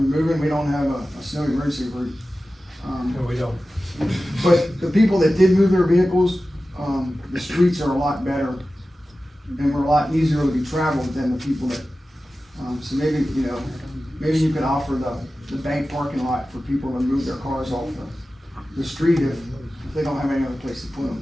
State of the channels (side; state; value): both; normal; correlation 0.95